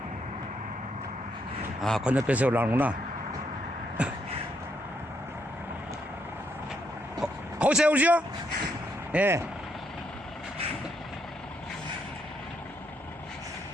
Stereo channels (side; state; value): both; normal; correlation 0.76